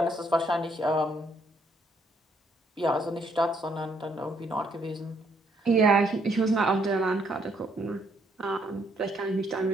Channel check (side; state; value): both; normal; correlation 0.71